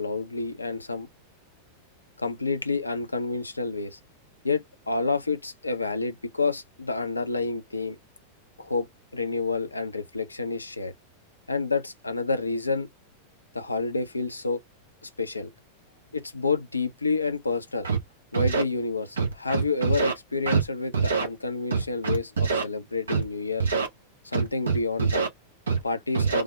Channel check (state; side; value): inverted; both; correlation -0.71